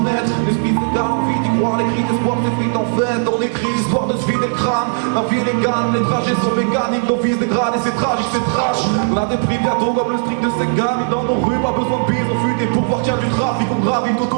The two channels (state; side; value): silent; left; digital silence